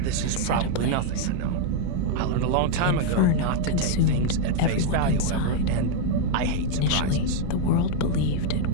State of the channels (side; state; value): both; different; correlation 0.00